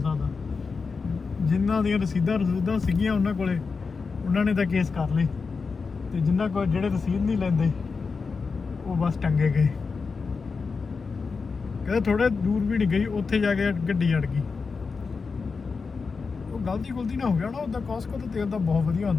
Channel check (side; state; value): right; quieter; 4.8 dB